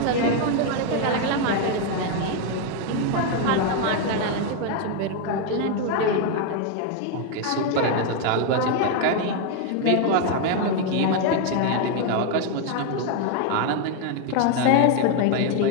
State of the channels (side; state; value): both; different; correlation 0.01